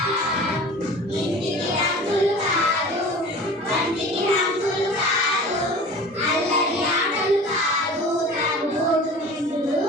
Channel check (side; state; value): both; normal; correlation 0.40